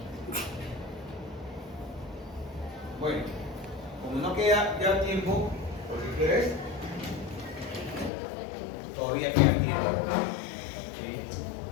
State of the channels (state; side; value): drops out; right; at 8.1 s